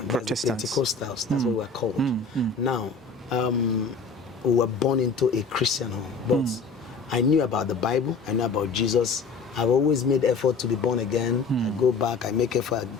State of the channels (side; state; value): right; quieter; 4.6 dB